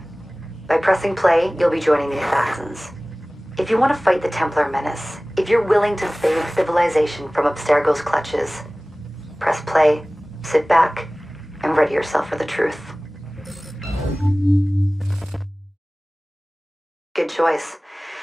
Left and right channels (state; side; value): normal; both; correlation 0.98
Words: By pressing play, you'll be joining the Assassins. If you want to fight the Templar menace, if you're willing to save civilization from Abstergo's clutches, press play, sit back, and ready yourself for the truth. Good choice.